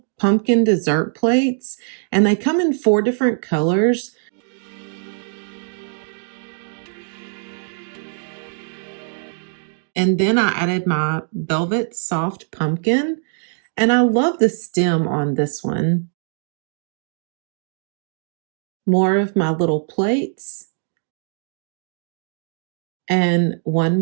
pumpkin dessert plates, and they come in 4 different colors. And then I added my velvet soft pumpkin, and I love the stem on this one. More of my little plates, and one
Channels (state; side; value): silent; left; digital silence